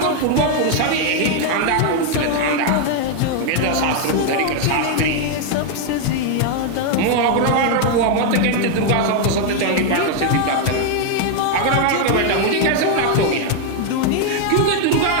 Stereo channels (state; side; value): different; both; correlation 0.00